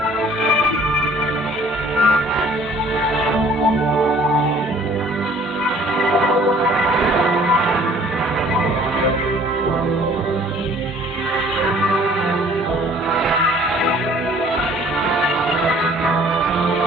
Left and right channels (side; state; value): both; normal; correlation 0.55